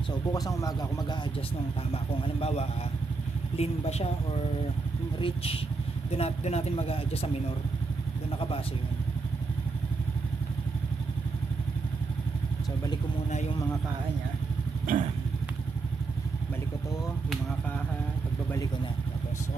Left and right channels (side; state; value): left; quieter; 4.1 dB